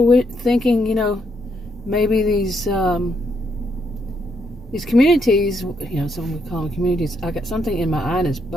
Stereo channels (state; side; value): normal; both; correlation 0.76